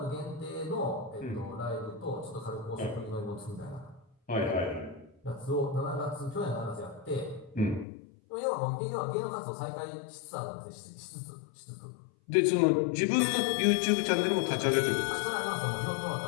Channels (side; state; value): right; drops out; at 7.9 s